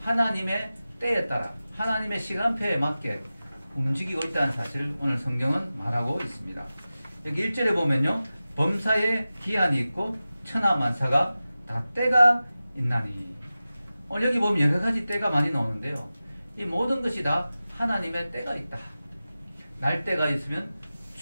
하나님의 때에 따라 하나님의 시간표에 맞게 움직이고 있다는 사실을 오늘 성경은 말하고 있습니다. 여기 1절에 보면요, 범사에 기한이 있고 천하만사가 다 때가 있나니. 오늘 여기 보면 여러 가지 때가 많이 나오는데요, 이 모든 것이 다 하나님의 때가 있다. 날 때가 있으면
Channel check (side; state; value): both; inverted; correlation -0.95